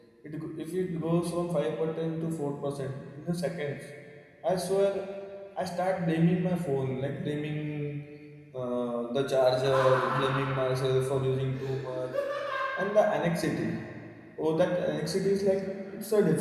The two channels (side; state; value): both; identical; correlation 1.00